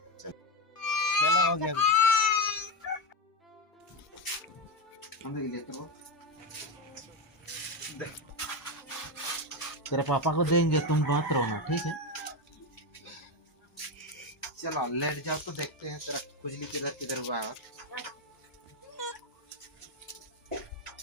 चलो हो गया। हम लेकर वो तेरे पापा को देंगे, तुम बात रहो ना, ठीक है? चलो लेट जाओ तो देखते हैं तेरा खुजली किधर किधर हुआ है।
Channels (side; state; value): both; normal; correlation 0.12